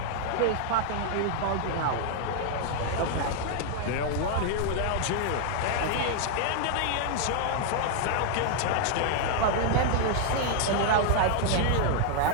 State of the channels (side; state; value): both; different; correlation 0.00